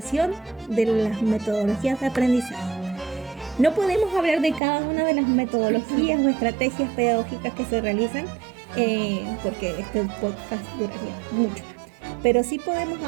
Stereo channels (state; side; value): drops out; left; at 4.6 s